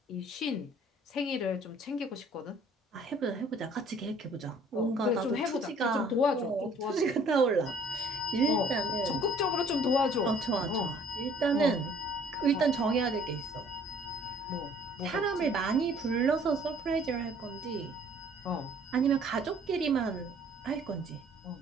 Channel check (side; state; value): both; normal; correlation 0.57